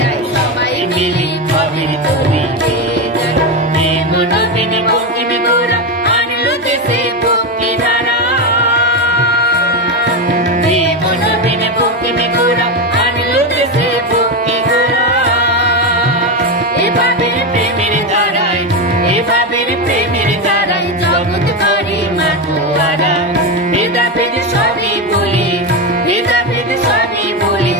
আই সবাই মিলে কবির তরি গেয়ে যায়। নবীন বঙ্কিম গোরা আনলো দেশে ভক্তি ধারা, নবীন বঙ্কিম গোরা আনলো দেশে ভক্তি ধারা। এভাবের প্রেমের ধারায়, এভাবের প্রেমের ধারায় জগৎ করে মাতোয়ারা। ভেদাভেদ সবই বলি, ভেদাভেদ সবই বলি,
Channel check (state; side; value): normal; both; correlation 0.12